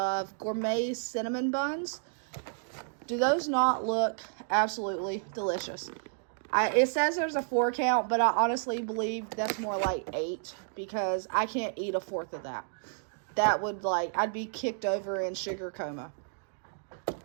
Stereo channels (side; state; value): left; silent; digital silence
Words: gourmet cinnamon buns. Do those not look absolutely delicious? It says there's a 4 count, but I honestly believe that's more like 8 because I can't eat a 4th of that. That would, I'd be kicked over in sugar coma.